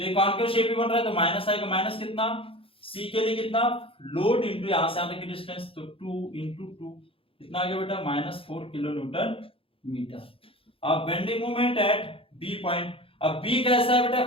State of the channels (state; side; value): late; right; 0.27 ms